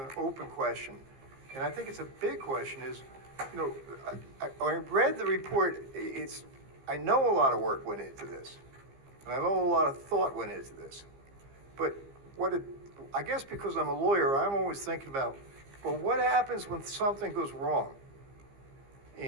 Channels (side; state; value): left; late; 15 ms